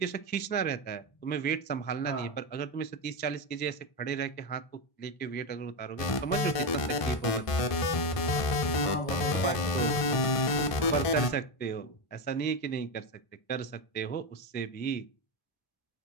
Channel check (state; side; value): late; right; 1.5 ms